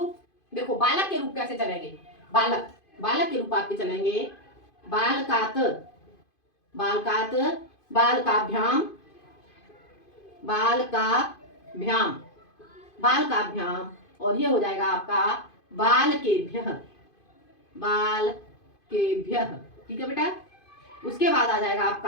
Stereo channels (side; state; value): right; late; 2.5 ms